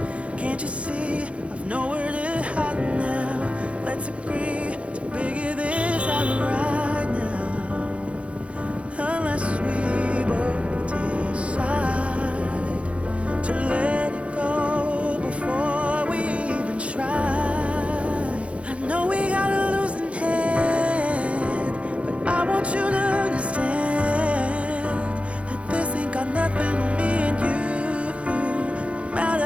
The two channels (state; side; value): late; left; 0.062 ms